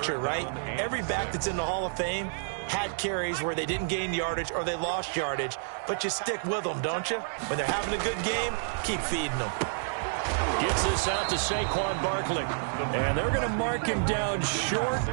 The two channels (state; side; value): silent; left; digital silence